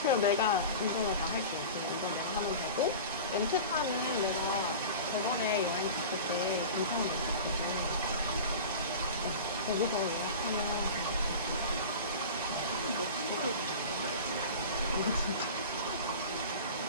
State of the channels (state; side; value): inverted; both; correlation -0.34